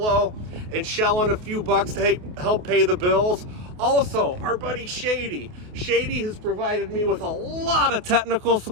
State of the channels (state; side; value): late; left; 28 ms